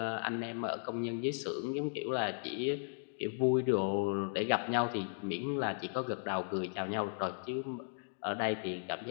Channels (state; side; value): silent; right; digital silence